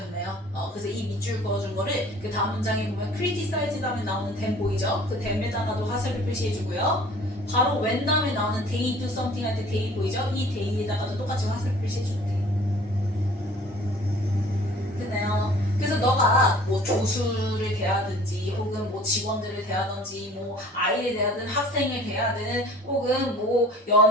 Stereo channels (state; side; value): normal; both; correlation 0.49